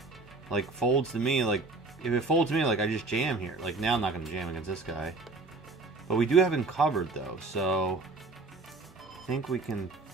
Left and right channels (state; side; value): quieter; left; 3.5 dB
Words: like, folds to me, like, if it folds to me, like, I just jam here. Like, now I'm not going to jam against this guy. But we do have him covered, though, so I think we can